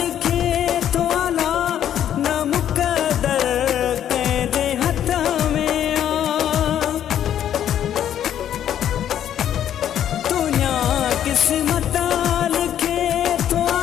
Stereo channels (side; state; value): right; quieter; 10.4 dB